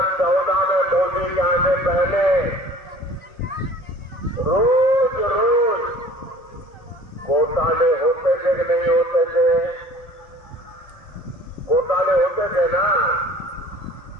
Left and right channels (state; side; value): late; right; 1.7 ms